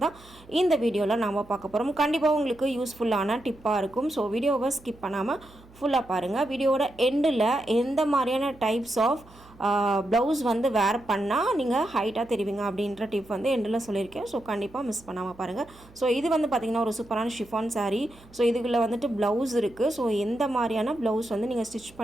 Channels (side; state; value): right; noise; hum, 24 dB below the sound